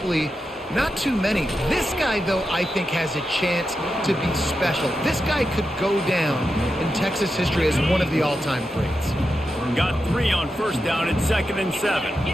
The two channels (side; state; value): both; normal; correlation 0.88